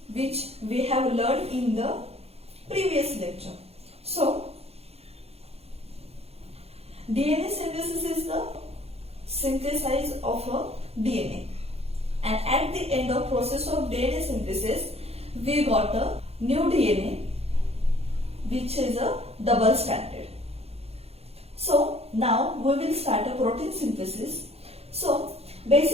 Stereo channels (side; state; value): left; late; 0.29 ms